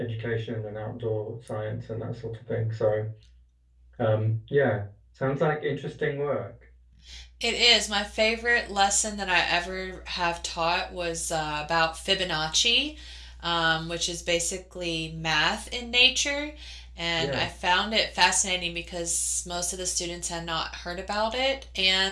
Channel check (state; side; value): identical; both; correlation 1.00